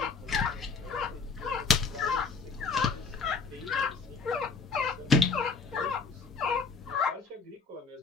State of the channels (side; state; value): right; quieter; 4.9 dB